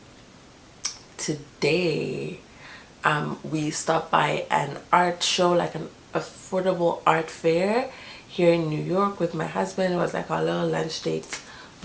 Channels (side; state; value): both; identical; correlation 1.00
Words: today we stopped by an art show, like an affordable art fair here in New York with my husband. It was like our little lunch date